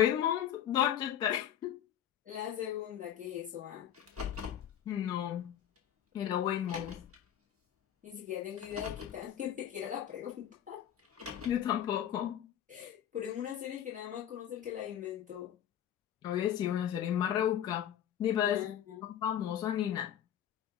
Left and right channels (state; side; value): quieter; right; 10.3 dB